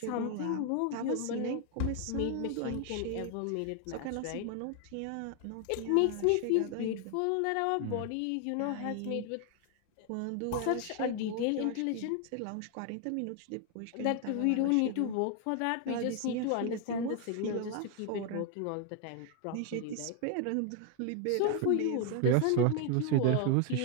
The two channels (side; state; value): both; different; correlation 0.00